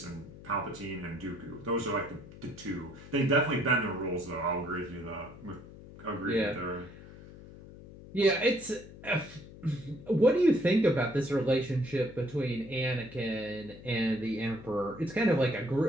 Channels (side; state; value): left; noise; hum, 17 dB below the sound